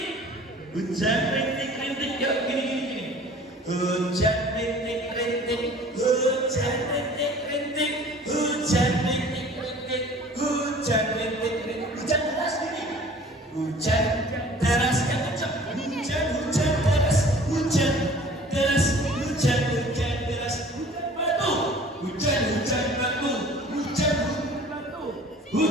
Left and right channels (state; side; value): normal; both; correlation 0.48